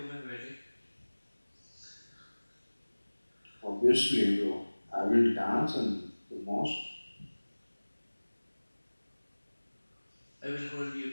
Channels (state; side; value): inverted; both; correlation -1.00